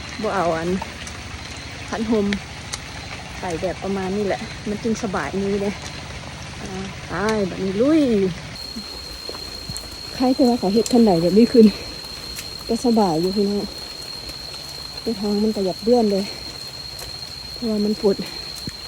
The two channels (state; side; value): identical; both; correlation 1.00